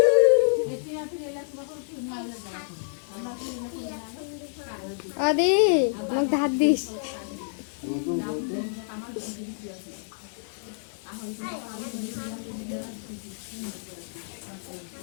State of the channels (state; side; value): silent; right; digital silence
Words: আদি মোক ধার দিস